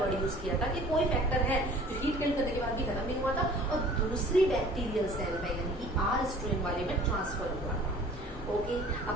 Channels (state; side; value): normal; both; correlation 0.49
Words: यूज किया था कि कोई फैक्टर है जो हीट किल करने के बाद भी खत्म नहीं हुआ था और दूसरी बैक्टीरियल सेल में यानी कि आर स्ट्रेन वाले में ट्रांसफर हुआ था। ओके,